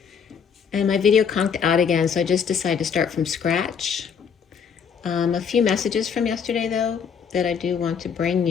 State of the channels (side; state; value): right; quieter; 6.9 dB